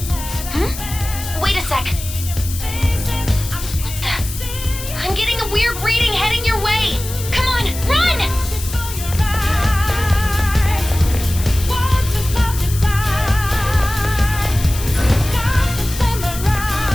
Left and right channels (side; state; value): left; noise; hiss, 10 dB below the sound